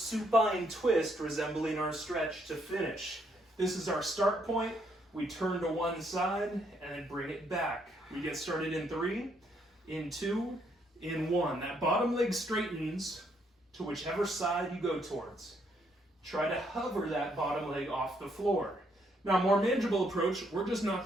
twist resembling our stretch to finish. This is our start point. We turn to one side and then bring it back. We get started in 3, in 2, in 1. That bottom leg straightens to whichever side you go towards. Try to hover that bottom leg off the floor. Now, more manageable approach, we're just not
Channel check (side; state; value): both; normal; correlation 0.72